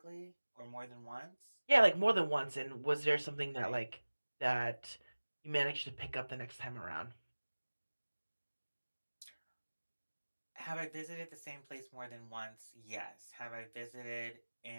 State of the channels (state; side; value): inverted; both; correlation -1.00